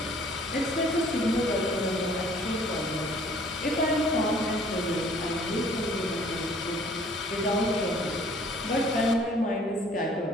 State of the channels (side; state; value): both; normal; correlation 0.56